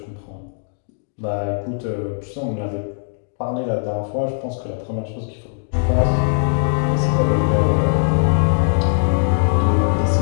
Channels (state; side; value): silent; right; digital silence